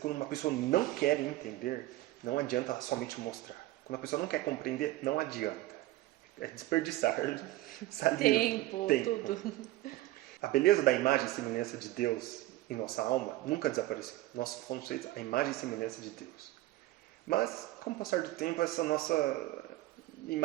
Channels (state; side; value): quieter; left; 17.0 dB